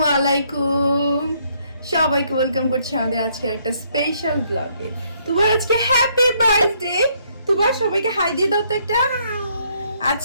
আলাইকুম, সবাইকে ওয়েলকাম করছি আমাদের আজকে একটা স্পেশাল ব্লগে। তোমার আজকে হ্যাপি বার্থডে। তোমার সবাইকে হাই দিয়ে দাও তো একটা।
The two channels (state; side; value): inverted; both; correlation -0.69